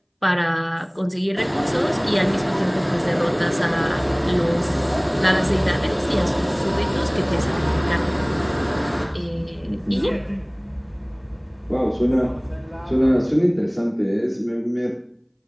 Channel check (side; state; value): both; identical; correlation 1.00